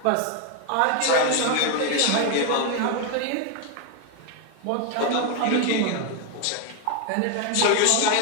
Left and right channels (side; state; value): both; different; correlation 0.01